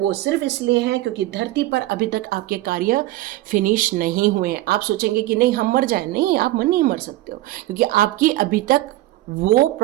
सिर्फ इसलिए हैं क्योंकि धरती पर अभी तक आपके कार्य फिनिश नहीं हुए हैं। आप सोचेंगे कि नहीं हम मर जाएं, नहीं, आप नहीं मर सकते हो, क्योंकि आपकी अभी तक वो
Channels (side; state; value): left; quieter; 16.9 dB